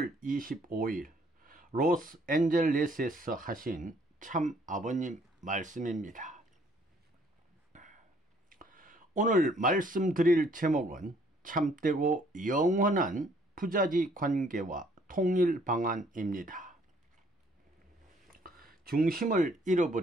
25일 로스앤젤레스에서 하신 참 아버님 말씀입니다. 오늘 말씀드릴 제목은 참되고 영원한 부자지 관계와 통일 방안입니다. 중심을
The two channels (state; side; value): normal; both; correlation 0.63